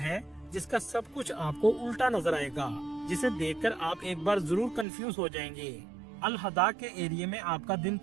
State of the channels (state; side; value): drops out; left; at 4.9 s